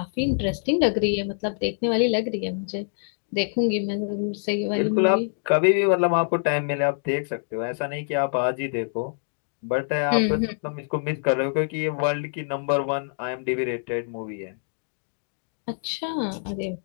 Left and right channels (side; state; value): right; silent; digital silence